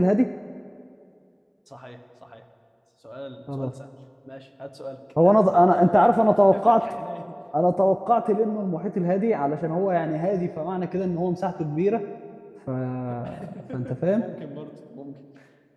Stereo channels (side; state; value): both; identical; correlation 1.00